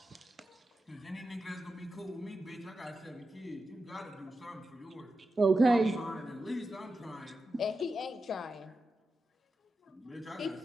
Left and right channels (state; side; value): normal; both; correlation 0.90